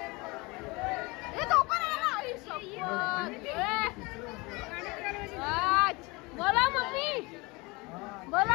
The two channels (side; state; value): right; quieter; 25.1 dB